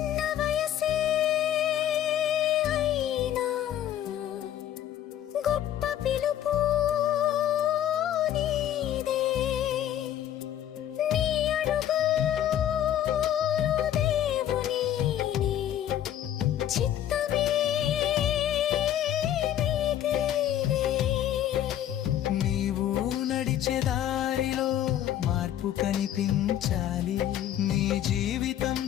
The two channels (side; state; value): right; quieter; 11.2 dB